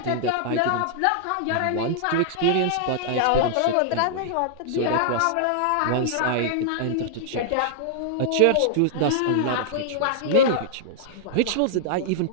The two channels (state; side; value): different; both; correlation -0.01